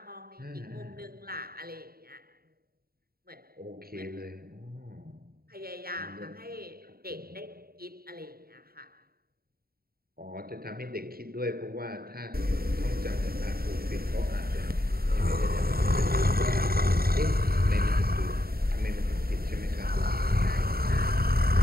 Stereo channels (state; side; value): late; left; 0.44 ms